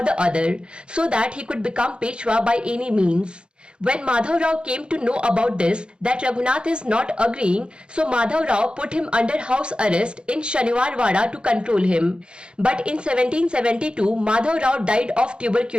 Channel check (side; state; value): left; late; 0.053 ms